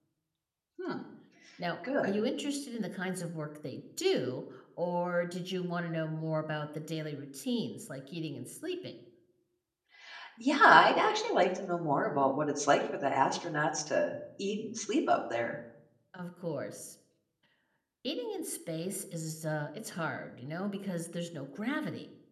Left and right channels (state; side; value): identical; both; correlation 1.00